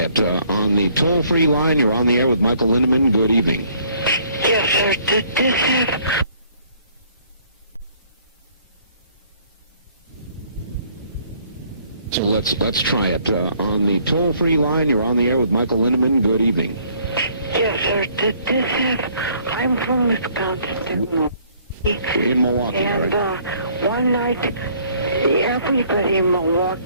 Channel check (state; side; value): inverted; both; correlation -0.61